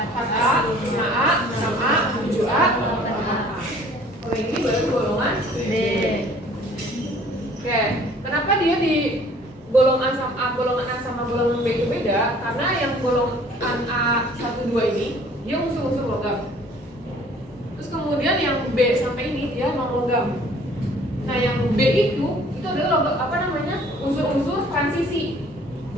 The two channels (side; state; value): both; normal; correlation 0.54